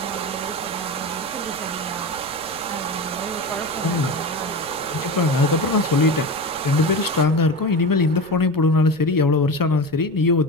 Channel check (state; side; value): noise; right; rumble, 24 dB below the sound